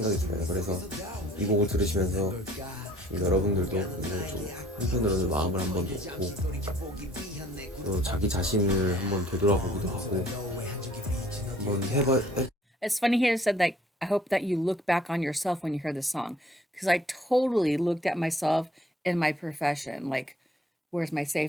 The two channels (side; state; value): both; normal; correlation 0.57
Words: 들어요. 그래서 이 곡을 들으시면서 여러분들도 좀 한편으로는 마음을 한번 놓고 또 자기 자신을 한번 되돌아보기도 하고 한번 It's funny he said that I hope that you look back on yourself when you hear this song because I totally looked at myself in my profession, like where's my